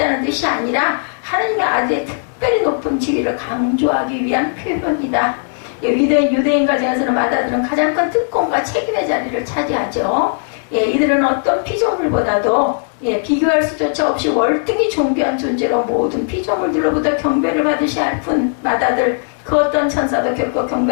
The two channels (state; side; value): silent; right; digital silence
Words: 뜻이 아니라 하나님의 아들의 특별히 높은 지위를 강조하기 위한 표현이다. 유대인 가정에서는 맏아들은 가장 큰 특권과 책임의 자리를 차지하죠. 이들은 어떤 피조물보다도 비교할 수조차 없이 월등히 존귀한 존재로 모든 피조물들로부터 경배를 받으셔야 할 뿐 맏아들 그 어떤 천사도 결코